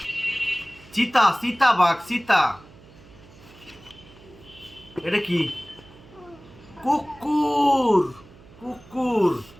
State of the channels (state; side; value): noise; right; hum, 23 dB below the sound